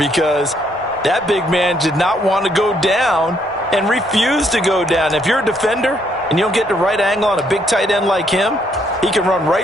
that big man did not want to go down and refused to go down. If you're a defender and you don't get the right angle on a big tight end like him, he can run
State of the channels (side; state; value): both; normal; correlation 0.71